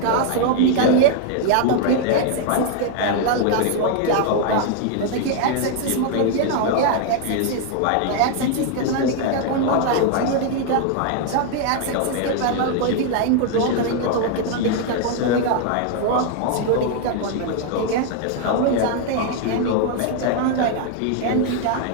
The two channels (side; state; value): both; different; correlation 0.00